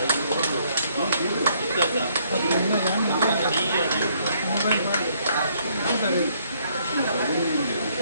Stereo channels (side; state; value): both; inverted; correlation -0.67